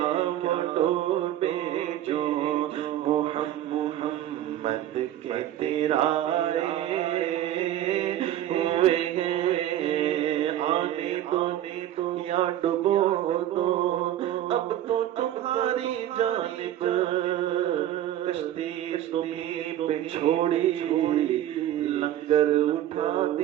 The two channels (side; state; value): left; quieter; 12.3 dB